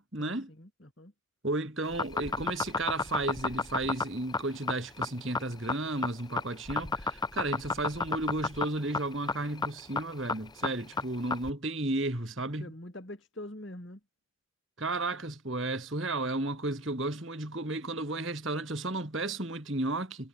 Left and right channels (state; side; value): normal; both; correlation 0.36